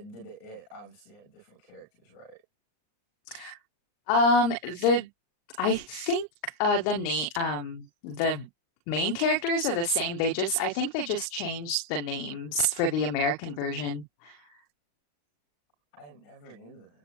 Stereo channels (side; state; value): right; late; 39 ms